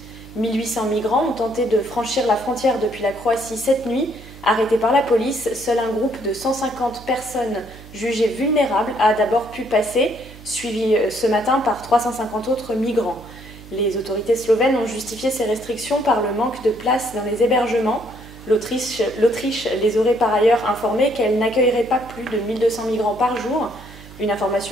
1800 migrants ont tenté de franchir la frontière depuis la Croatie cette nuit. Arrêtés par la police, seul un groupe de 150 personnes jugées vulnérables a d'abord pu passer, suivi ce matin par 350 autres migrants. Les autorités slovènes ont justifié ces restrictions par le manque de place dans les hébergements. L'Autriche les aurait par ailleurs informés qu'elle n'accueillerait pas plus de 1200 migrants par jour. Une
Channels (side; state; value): right; noise; hum, 18 dB below the sound